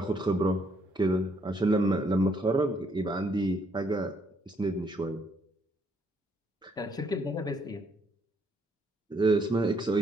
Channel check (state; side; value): normal; both; correlation 0.70